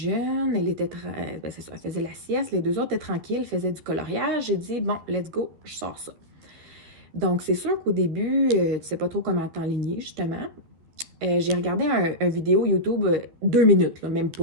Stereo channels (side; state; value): left; late; 12 ms